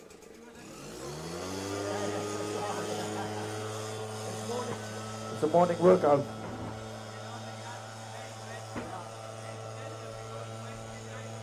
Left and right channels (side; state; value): both; identical; correlation 1.00